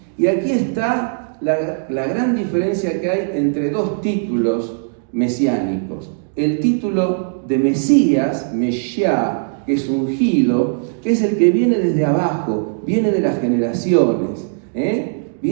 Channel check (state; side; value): silent; left; digital silence